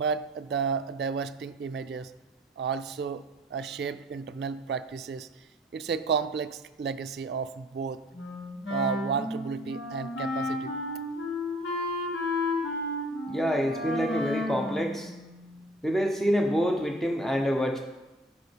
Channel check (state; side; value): normal; both; correlation 0.50